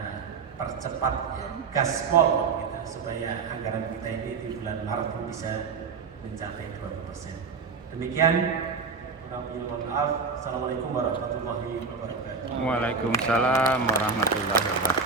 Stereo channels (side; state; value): left; quieter; 4.9 dB